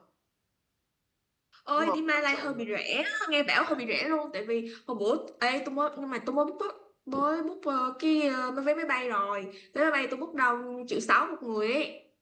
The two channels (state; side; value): identical; both; correlation 1.00